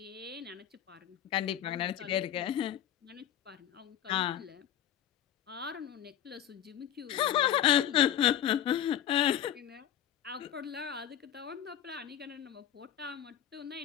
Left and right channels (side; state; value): right; quieter; 10.7 dB